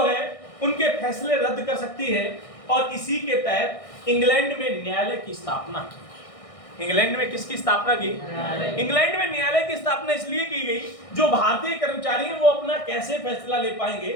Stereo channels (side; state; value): right; late; 1.6 ms